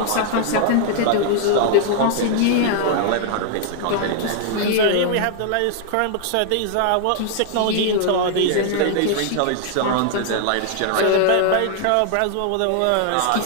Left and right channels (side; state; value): both; different; correlation 0.00